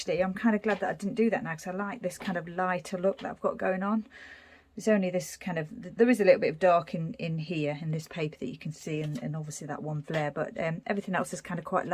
I'm kind of glad that I didn't do that now, because I like this kind of lighter look that I've got going on. There's only this kind of, there is a little bit of dark in here in this paper that you can see, and obviously that one flare, but everything else is kind of quite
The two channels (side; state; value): both; identical; correlation 1.00